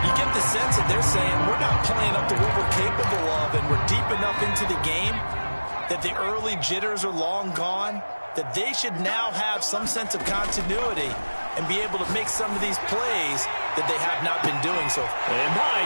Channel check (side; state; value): both; inverted; correlation -1.00